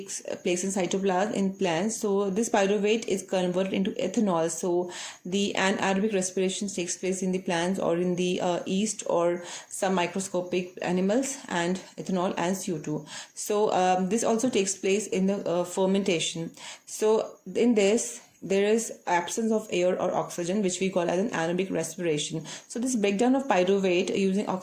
place in cytoplasm in plants. So this pyruvate is converted into ethanol. So the anaerobic respiration takes place in the plants or in the yeast or some microscopic animals, and ethanol and CO2. So this also takes place in the fermentation. So in this there is absence of air or oxygen, which we call as an anaerobic respiration. So this breakdown of pyruvate using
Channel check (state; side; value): identical; both; correlation 1.00